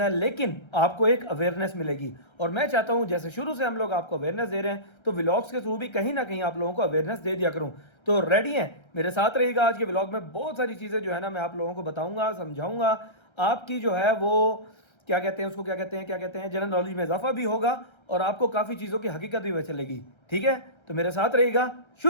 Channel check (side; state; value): right; late; 1.3 ms